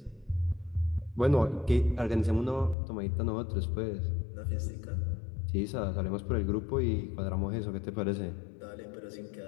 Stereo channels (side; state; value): right; drops out; at 2.8 s